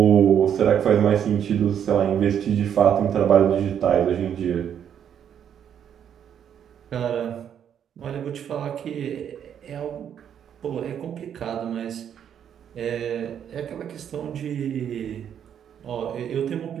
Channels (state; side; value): quieter; left; 8.9 dB